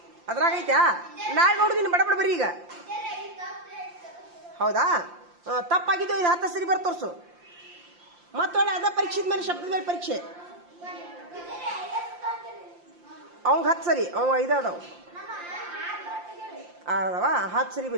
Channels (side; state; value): left; late; 5.7 ms